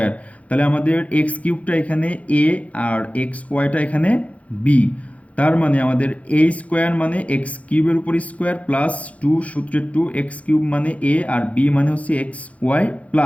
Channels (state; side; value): late; right; 0.066 ms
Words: তাহলে আমাদের এক্স কিউবটা এখানে এ আর এক্স ওয়াইটা এখানে বি। তার মানে আমাদের এ স্কোয়ার মানে এক্স কিউবের উপর স্কোয়ার প্লাস টু সূত্রের টু, এক্স কিউব মানে এ আর বি মানে হচ্ছে x y